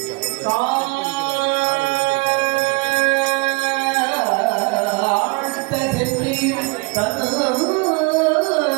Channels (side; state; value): left; quieter; 28.3 dB